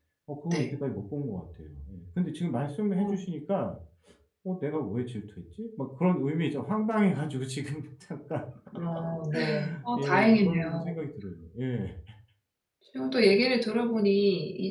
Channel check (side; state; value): both; identical; correlation 1.00